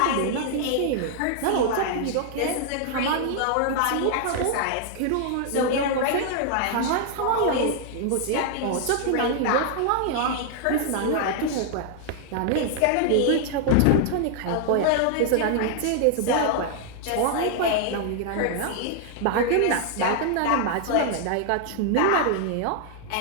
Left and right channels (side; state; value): both; different; correlation 0.00